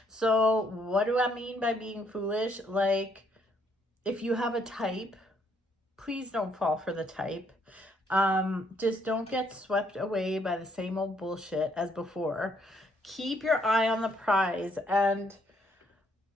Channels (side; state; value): both; normal; correlation 0.70